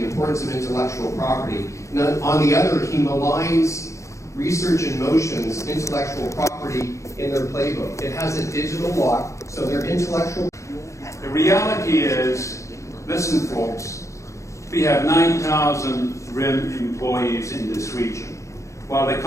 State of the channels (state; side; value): late; right; 0.15 ms